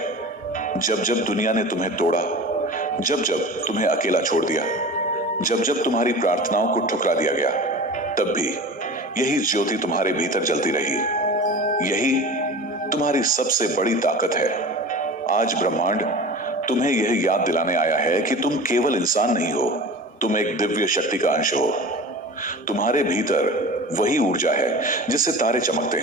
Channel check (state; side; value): normal; both; correlation 0.35